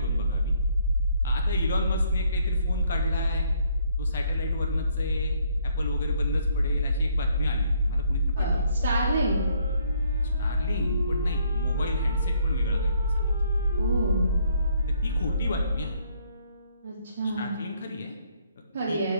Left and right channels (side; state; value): both; inverted; correlation -0.67